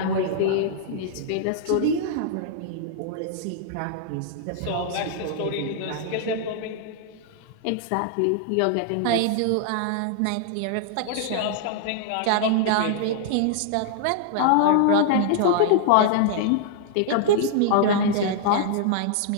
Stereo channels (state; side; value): different; both; correlation -0.01